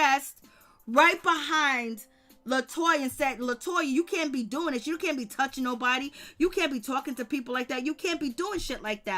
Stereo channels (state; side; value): identical; both; correlation 1.00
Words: right behind Latoya and said, Latoya, you can't be doing this. You can't be touching nobody. You can't be talking to people like that. You can't be doing shit like